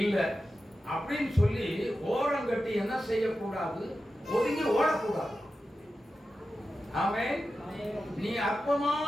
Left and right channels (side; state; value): both; normal; correlation 0.92